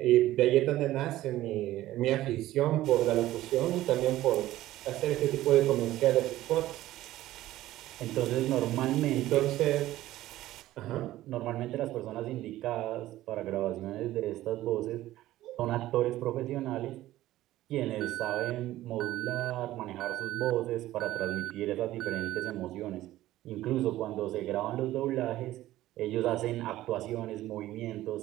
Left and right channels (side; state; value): left; quieter; 15.2 dB